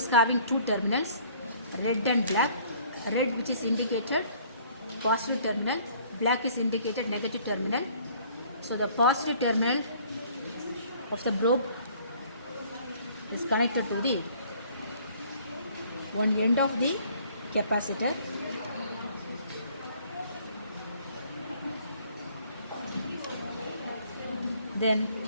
having 2 terminals, red and black. Red which is indicated positive terminal, black is indicated negative terminal. So the positive terminal of the probe is connected to the one end of the capacitor.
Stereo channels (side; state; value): both; inverted; correlation -0.57